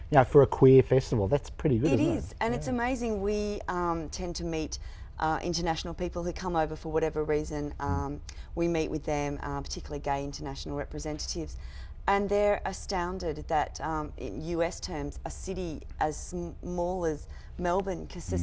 You know, for a queer festival, that's pretty good. It is, and it's amazing. We tend to meet international people who come over for whatever reason. We meet with them, particularly gay international representatives, and they're astounded that, in US terms, a city as small as Melbourne can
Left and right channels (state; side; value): identical; both; correlation 1.00